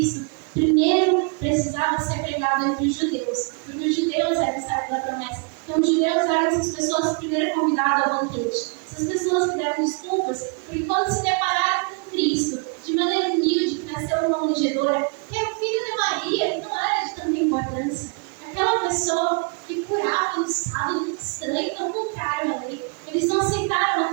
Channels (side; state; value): left; quieter; 36.0 dB